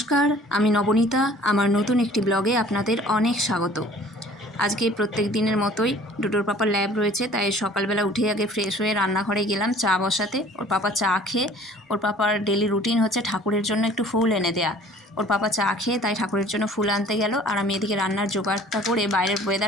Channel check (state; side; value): normal; both; correlation 0.51